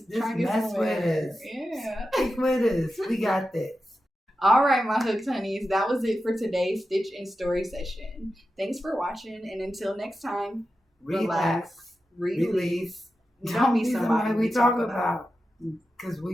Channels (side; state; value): both; normal; correlation 0.91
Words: mess with us. Yeah. Stick with us. We got this. All right, my hooked honeys. That was it for today's Stitch and Story session. Thanks for watching. And until next time, Relax. Release. Don't be somebody we talk about. Because